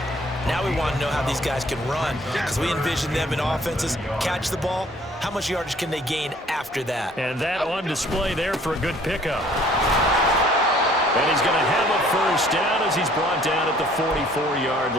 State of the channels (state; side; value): normal; both; correlation 0.57